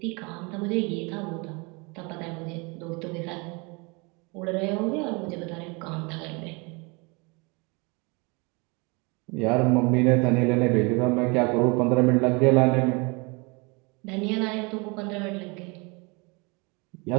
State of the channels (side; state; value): left; quieter; 29.1 dB